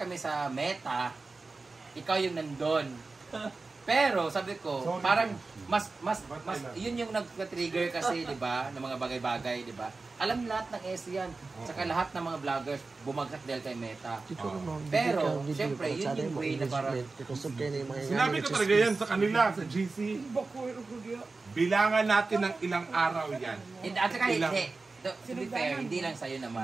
sa meta, ikaw yung nandun. Pero sabi ko, Sorry. parang mas yun yung nag-trigger kasi, 'di ba, ng mga bagay-bagay, 'di ba? Alam lahat ng S yan. Saka lahat ng mga vloggers bumagsak dahil kay Meta. Pero, syempre, yun yung way na parang Sinabi ko talaga yan sa kanila, sa GC. Bilangan natin ng ilang araw yan. At saka Ilang- hindi. To be fair, hindi lang sa'yo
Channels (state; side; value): quieter; left; 3.8 dB